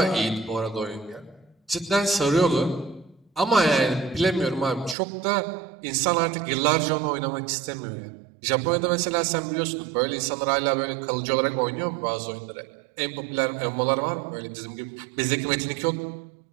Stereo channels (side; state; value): left; drops out; at 5.0 s